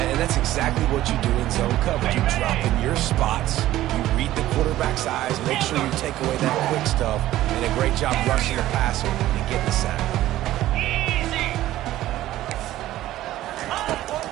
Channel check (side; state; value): left; quieter; 14.6 dB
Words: that's exactly what you do in zone coverage. You drop in your spots, you read the quarterback's eyes, make sure you take away that quick stuff, and a great job rushing the passer and getting the sack. Easy.